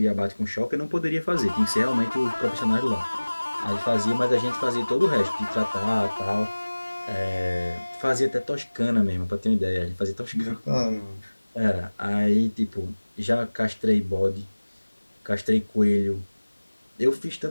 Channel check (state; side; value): inverted; both; correlation -1.00